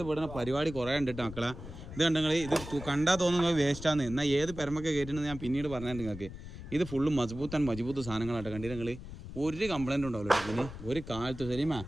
പരിപാടി കുറേ ഉണ്ട് കേട്ടോ മക്കളാ ഇത് കണ്ടെങ്കിൽ ഇത് കണ്ടാൽ തോന്നുന്നത് വേസ്റ്റാന്ന് എന്നാൽ ഏത് പെരമൊക്കെ കയറ്റുന്നത് ഞാൻ പിന്നീട് പറഞ്ഞിട്ടുണ്ട് നിങ്ങൾക്ക് ഇത് ഫുള്ള് മജബൂത്ത് സാധനങ്ങളായിട്ട് കണ്ടിട്ട് നിങ്ങൾ ഒരു കംപ്ലൈൻറ്റ് ഉണ്ടാവില്ല ഇതിന് ഒരു കാലത്ത് ശരിമാ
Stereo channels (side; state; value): left; noise; rumble, 12 dB below the sound